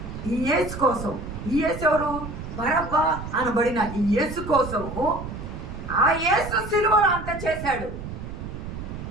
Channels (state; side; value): noise; right; rumble, 9 dB below the sound